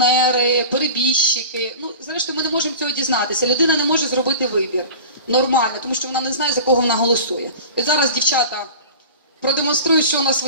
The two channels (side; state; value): both; inverted; correlation -0.35